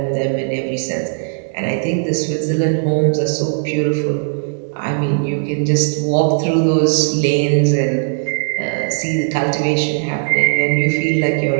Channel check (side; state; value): left; silent; digital silence